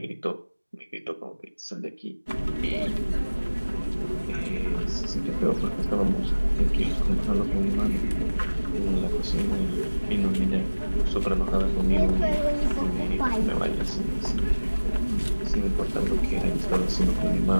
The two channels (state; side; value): inverted; both; correlation -1.00